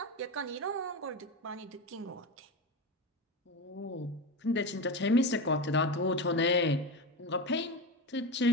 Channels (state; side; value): normal; both; correlation 0.20